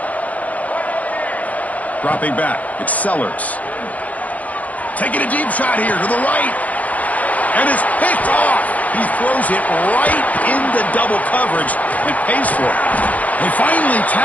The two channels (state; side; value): late; right; 0.073 ms